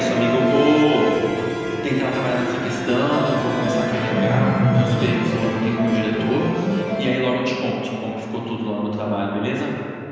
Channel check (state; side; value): identical; both; correlation 1.00